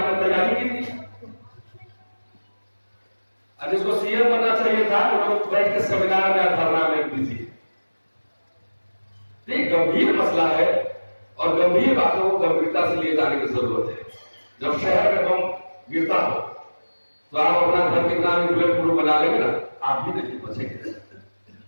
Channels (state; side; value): inverted; both; correlation -1.00